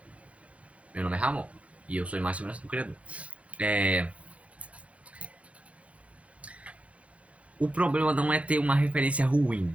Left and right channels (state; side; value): late; left; 0.064 ms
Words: Meu nome é Ramon. E eu sou imagem e semelhança do Criador. O problema não é ter uma referência ruim.